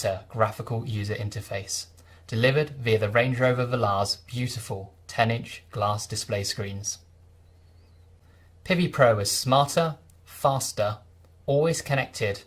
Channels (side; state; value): both; identical; correlation 1.00